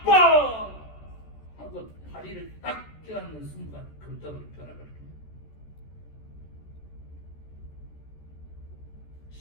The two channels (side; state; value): right; late; 14 ms